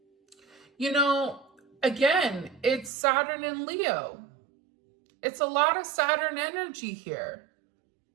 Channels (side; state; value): left; drops out; at 2.9 s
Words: You know, again, it's Saturn and Leo. It's a lot of Saturn energy here.